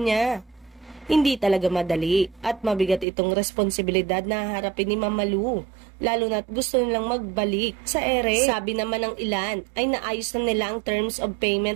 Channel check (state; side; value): drops out; left; at 3.1 s